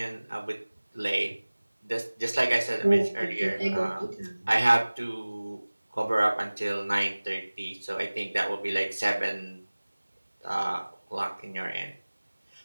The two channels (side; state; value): both; inverted; correlation -1.00